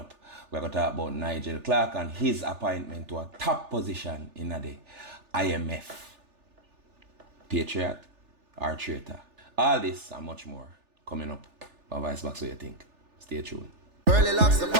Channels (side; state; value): left; late; 3.4 ms